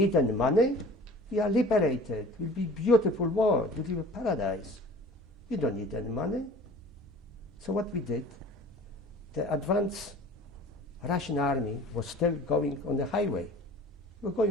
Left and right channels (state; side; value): normal; both; correlation 0.44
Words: any money. We are liberated. It will be a beautiful world. It will be a paradise. We don't need any money. So what we did, the advanced Russian army was still going on the highway. We're